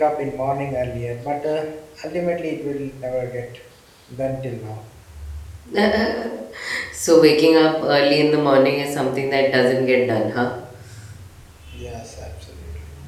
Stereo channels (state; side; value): identical; both; correlation 1.00